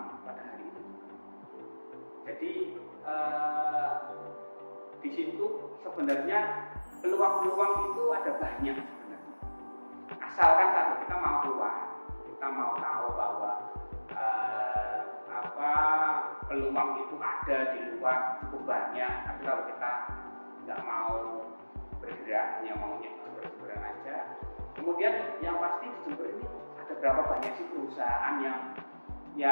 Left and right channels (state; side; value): inverted; both; correlation -1.00